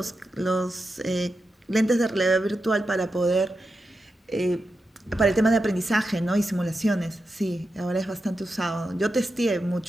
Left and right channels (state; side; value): normal; both; correlation 0.89